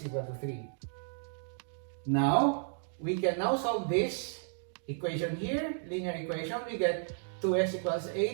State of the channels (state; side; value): silent; left; digital silence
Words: equal to 3. Now, we can now solve this equation here, linear equation. We get 2x equals